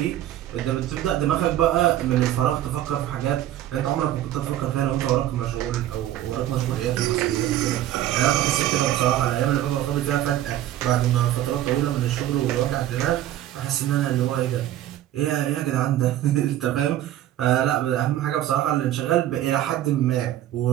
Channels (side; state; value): left; quieter; 12.9 dB